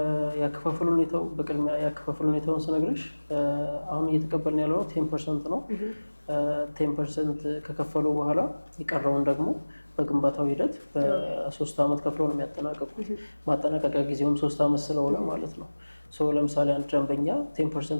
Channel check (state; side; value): inverted; both; correlation -1.00